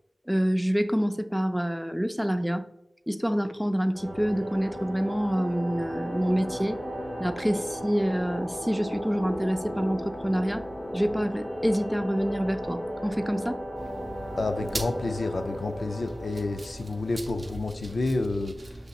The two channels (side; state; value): both; normal; correlation 0.98